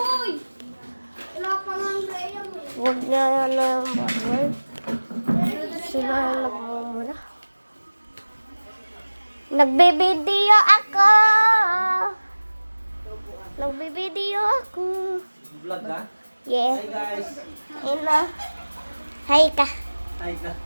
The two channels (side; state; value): both; inverted; correlation -1.00